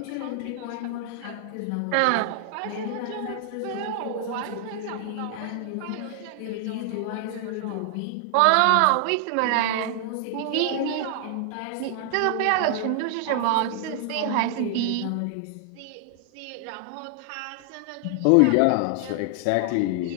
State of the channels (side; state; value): both; different; correlation 0.00